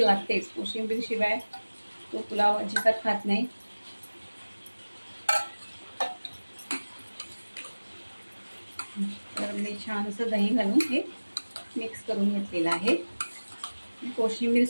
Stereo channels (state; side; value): inverted; both; correlation -1.00